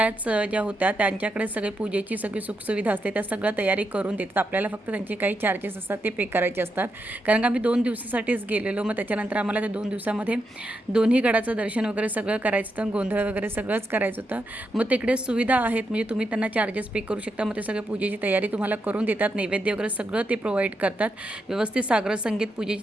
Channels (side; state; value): both; normal; correlation 0.84